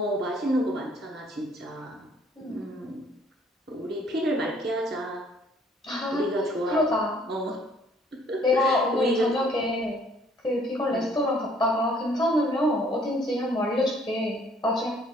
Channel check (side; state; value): both; normal; correlation 0.61